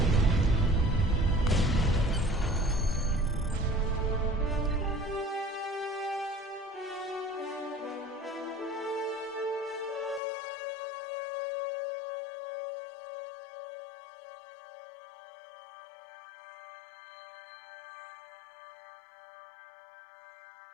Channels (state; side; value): drops out; right; at 10.2 s